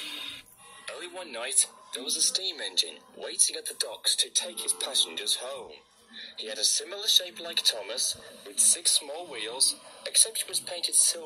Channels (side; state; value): both; identical; correlation 1.00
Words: one night, there was a steam engine waiting at the docks to take his passengers home. He had a similar shape like Thomas, with 6 small wheels, except he was painted